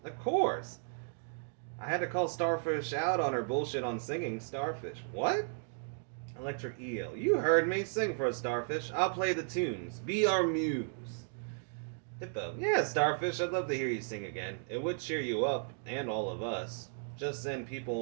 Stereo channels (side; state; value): left; silent; digital silence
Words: of course. I had to call Starfish out on her bullshit on singing. Starfish, what? Electric eel, you heard me. Sing for us, Starfish. I'll play the tunes. Be our muse. Hippo, yeah, Starfish, I'd love to hear you sing again. It would cheer you up, and all of us. Just then